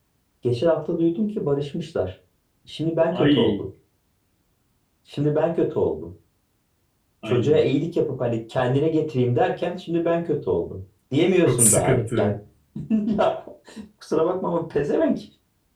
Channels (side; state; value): both; identical; correlation 1.00